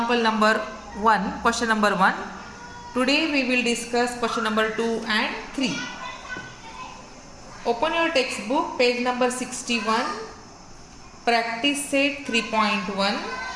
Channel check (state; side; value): identical; both; correlation 1.00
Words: number 1, question number 1. Today we will discuss question number 2 and 3. Open your textbook, page number 61, practice set 3.1.